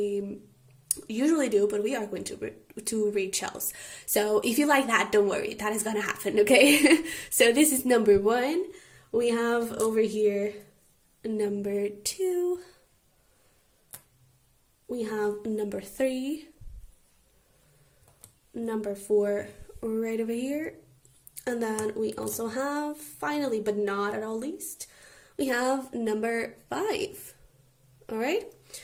usually do, but we are going to read shells. So if you like that, don't worry, that is gonna happen. Okay. So this is number 1. We have over here number 2. We have number 3, number 4 right over here, and then we also have, finally but not at all least, we have number 5. All right,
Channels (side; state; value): both; identical; correlation 1.00